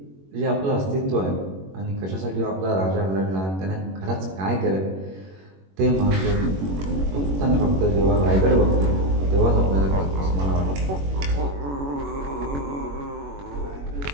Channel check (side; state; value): left; late; 21 ms